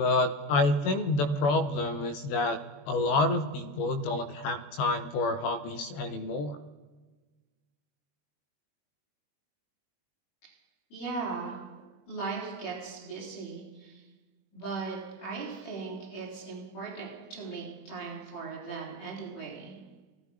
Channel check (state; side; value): late; right; 21 ms